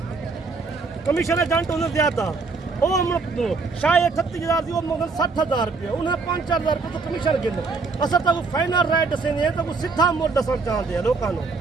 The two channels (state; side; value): quieter; left; 4.3 dB